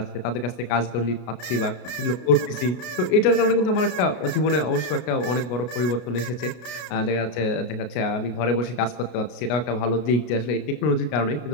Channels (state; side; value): late; right; 32 ms